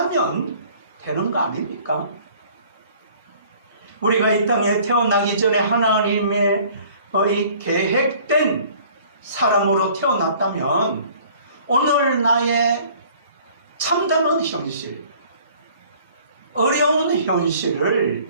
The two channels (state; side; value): inverted; both; correlation -0.53